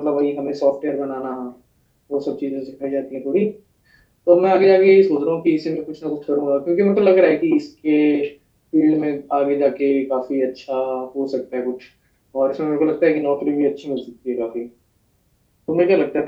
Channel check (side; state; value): both; identical; correlation 1.00